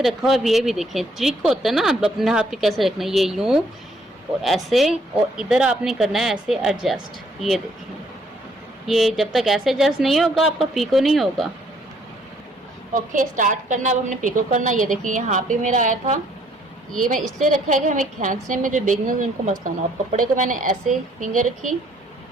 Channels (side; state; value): both; normal; correlation 0.65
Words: रखा हुआ है, ये भी देखें ट्रिक होता है ना, अब अपने हाथ पे कैसे रखना है, ये यूं और ऐसे, और इधर आपने करना है ऐसे एडजस्ट। ये देखें, ये जब तक ऐसे एडजस्ट नहीं होगा आपका पीको नहीं होगा। ओके, स्टार्ट करना, अब हमने पिको करना। ये देखिए यहाँ पे मेरा आया था, ये मैं इसलिए रखा है कि हमें खींचने में जो बिगनर्स उनको मसला ना हो। कपड़े को मैंने ऐसे फिंगर रखी,